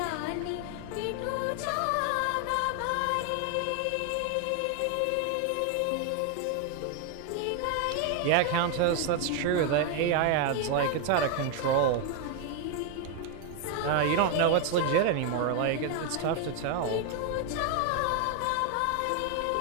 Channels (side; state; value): both; different; correlation 0.01